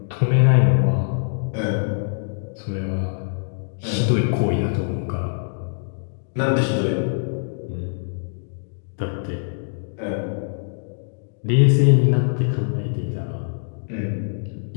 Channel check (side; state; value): right; silent; digital silence